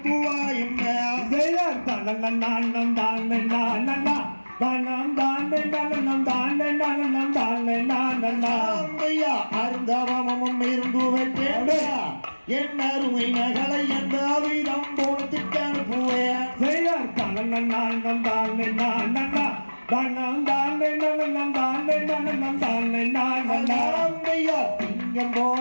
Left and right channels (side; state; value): both; inverted; correlation -1.00